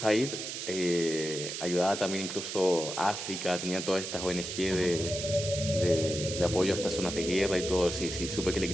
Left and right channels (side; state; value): right; noise; hiss, 6 dB below the sound